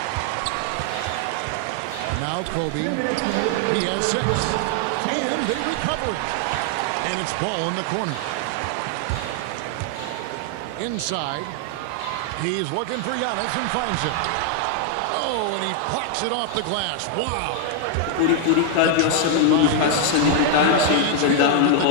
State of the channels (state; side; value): different; both; correlation 0.00